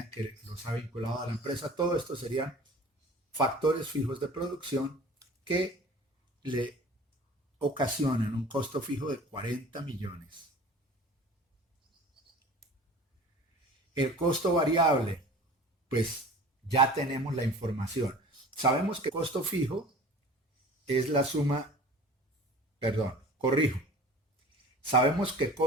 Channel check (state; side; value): normal; both; correlation 0.42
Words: en que los ha vinculado a la empresa. Todo esto serían factores fijos de producción que le ocasionan un costo fijo de 40 millones. El costo variable, pues ya tenemos la información. Sabemos que el costo fijo es la suma, perdón, corrijo. Sabemos que el